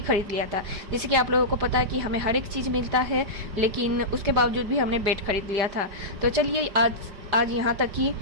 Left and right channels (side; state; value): left; late; 5.1 ms